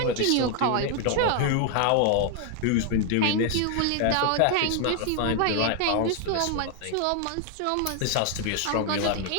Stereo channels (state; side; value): different; both; correlation 0.00